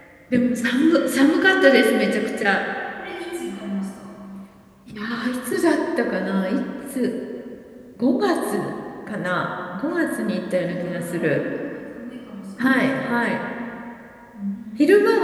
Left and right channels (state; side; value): identical; both; correlation 1.00